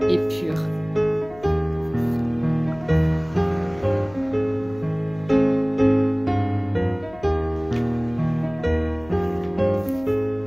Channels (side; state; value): left; noise; hum, 21 dB below the sound